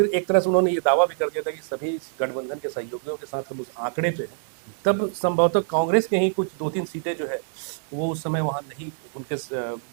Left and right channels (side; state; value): left; silent; digital silence